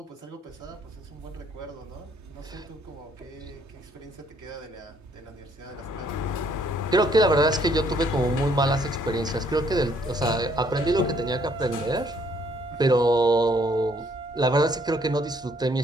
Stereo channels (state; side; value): normal; both; correlation 0.66